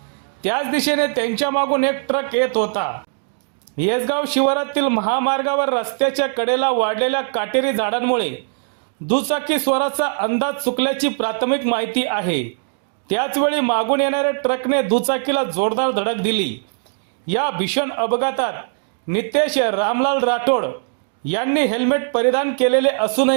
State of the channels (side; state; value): left; silent; digital silence